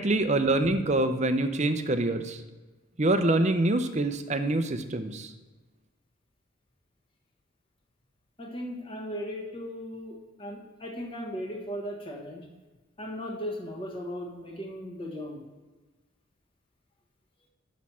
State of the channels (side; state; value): both; normal; correlation 0.52